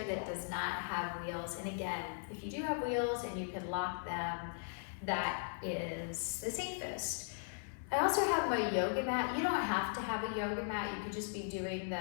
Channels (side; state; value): right; silent; 52 dB below the other